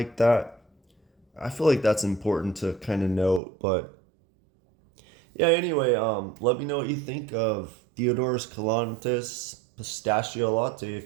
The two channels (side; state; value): left; drops out; at 3.4 s